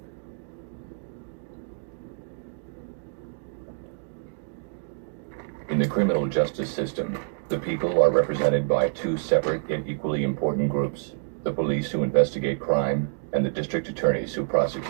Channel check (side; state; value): left; silent; 60 dB below the other